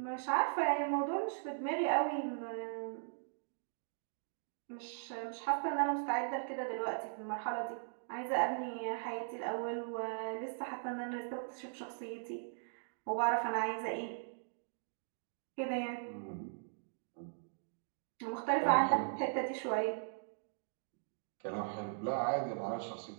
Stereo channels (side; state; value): left; silent; digital silence